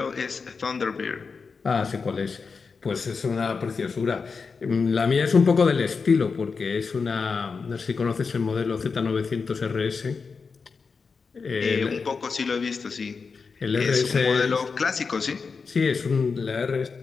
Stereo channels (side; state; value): right; quieter; 5.0 dB